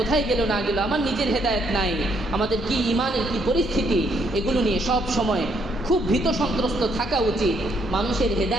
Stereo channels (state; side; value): normal; both; correlation 0.71